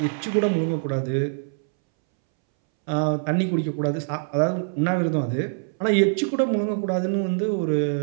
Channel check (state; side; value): silent; left; 62 dB below the other